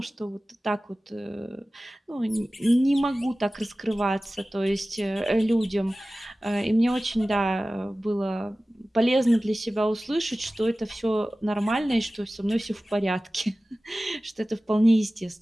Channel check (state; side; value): normal; both; correlation 0.97